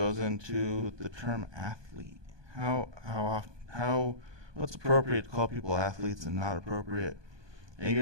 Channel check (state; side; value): late; left; 1.2 ms